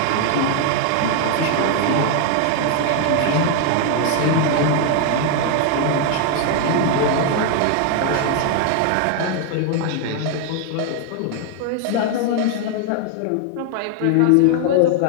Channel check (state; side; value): different; both; correlation 0.00